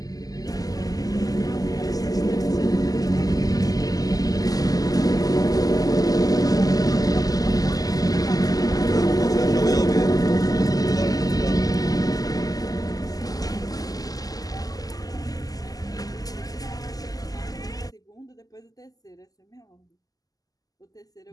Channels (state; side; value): late; right; 0.17 ms